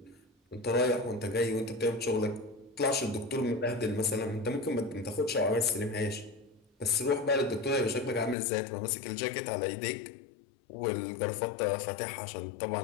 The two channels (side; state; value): right; drops out; at 8.3 s